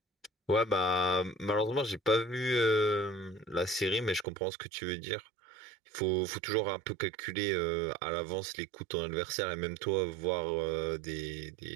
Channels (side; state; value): left; drops out; at 4.2 s